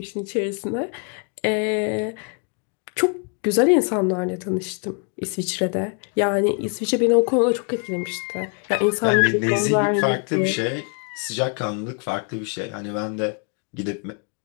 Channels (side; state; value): right; quieter; 37.8 dB